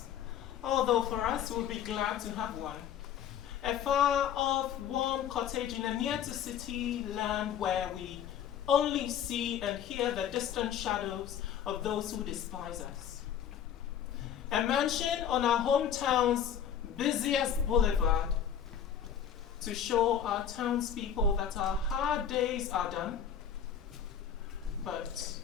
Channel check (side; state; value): right; quieter; 8.9 dB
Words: although for us we'll be glad to have one. A far-off, warm cottage in a near-to-city land where we only see and hear the distant shadows of those who despise us. A mansion on our hometown's busiest boulevard to show our townspeople that our hard days are done, but